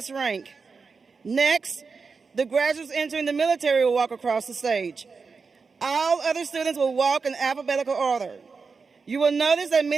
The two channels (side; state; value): left; quieter; 4.9 dB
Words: rank. Next, the graduates entering the military will walk across the stage. All other students will walk in alphabetical order. You will notice that